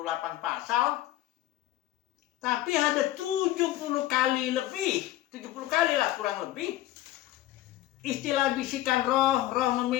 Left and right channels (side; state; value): right; quieter; 14.9 dB